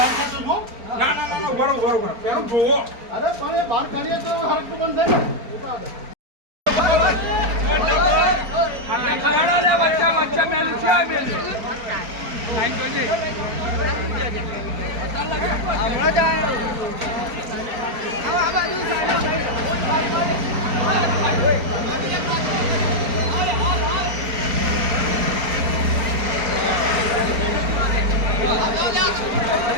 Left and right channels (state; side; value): late; left; 4.4 ms